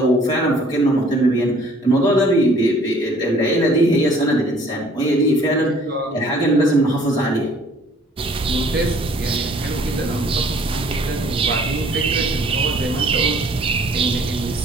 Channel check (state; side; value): normal; both; correlation 0.56